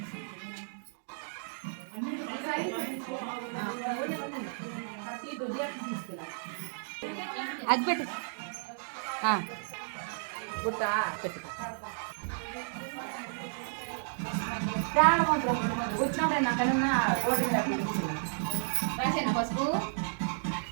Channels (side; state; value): left; silent; digital silence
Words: అది పెట్టు గుట్ట పెట్టు వచ్చినప్పుడే నాకన్నా రాసేనా పసుపు